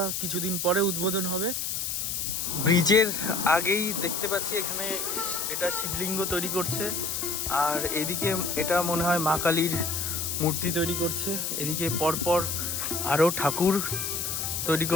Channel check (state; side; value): noise; left; hiss, 2 dB below the sound